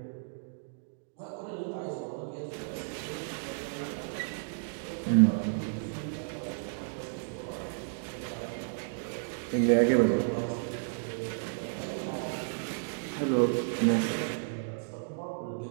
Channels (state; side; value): silent; left; digital silence